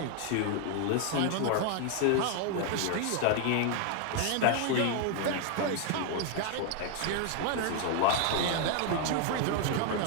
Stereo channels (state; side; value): different; both; correlation 0.00